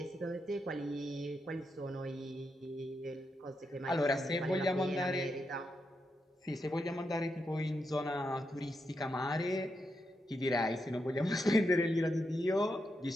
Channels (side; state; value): both; normal; correlation 0.84